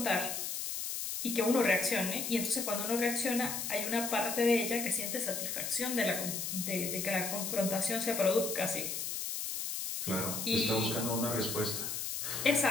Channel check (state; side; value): noise; left; hiss, 3 dB below the sound